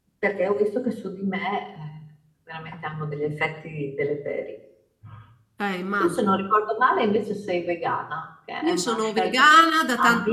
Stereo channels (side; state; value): both; identical; correlation 1.00